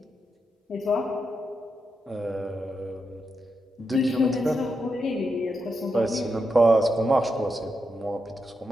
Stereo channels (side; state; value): both; normal; correlation 0.85